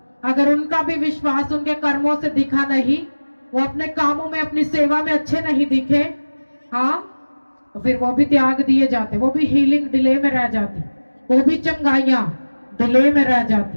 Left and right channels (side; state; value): both; inverted; correlation -1.00